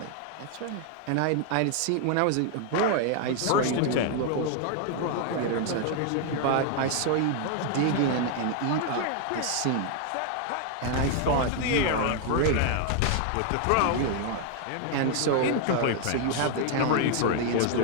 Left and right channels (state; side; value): different; both; correlation 0.00